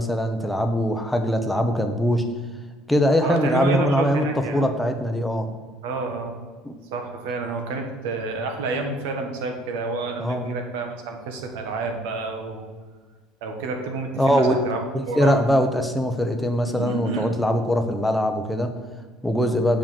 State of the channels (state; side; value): normal; both; correlation 0.69